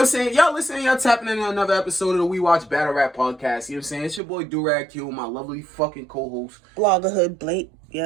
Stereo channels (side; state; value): left; drops out; at 4.2 s